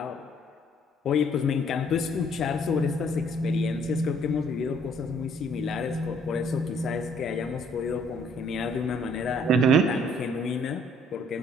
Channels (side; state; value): both; normal; correlation 0.62